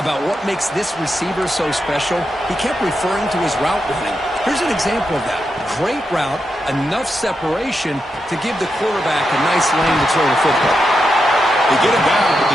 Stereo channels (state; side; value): normal; both; correlation 0.86